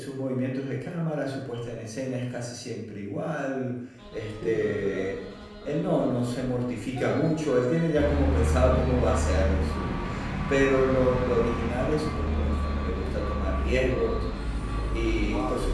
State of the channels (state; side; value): identical; both; correlation 1.00